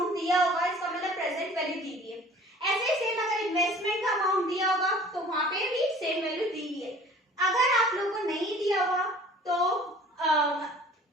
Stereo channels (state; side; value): normal; both; correlation 0.48